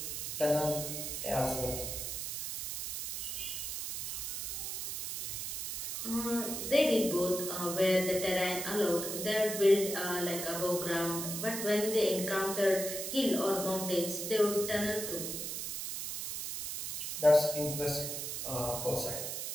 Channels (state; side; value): noise; right; hiss, 4 dB below the sound